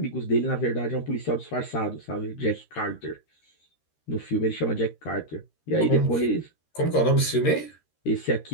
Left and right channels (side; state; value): right; late; 13 ms